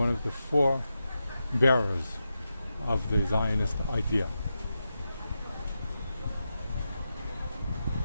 of the four bearers of the Zionist idea.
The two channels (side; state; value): both; inverted; correlation -0.88